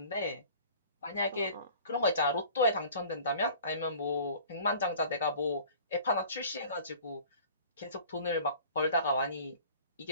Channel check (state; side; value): inverted; both; correlation -0.47